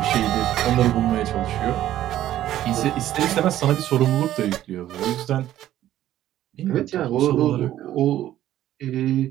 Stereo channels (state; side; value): quieter; left; 12.9 dB